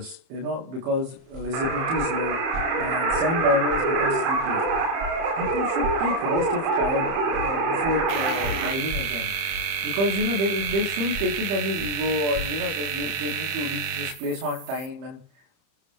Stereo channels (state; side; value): late; left; 30 ms